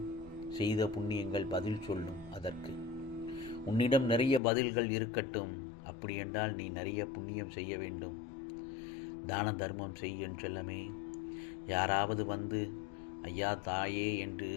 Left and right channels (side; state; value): right; drops out; at 4.4 s